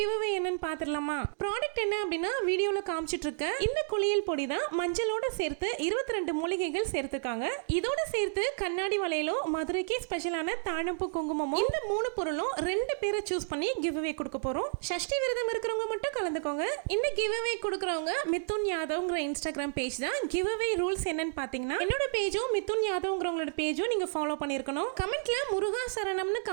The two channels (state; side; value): silent; left; digital silence